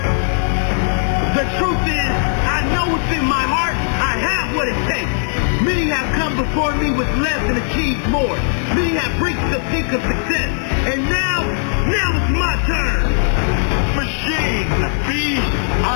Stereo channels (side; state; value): right; silent; 61 dB below the other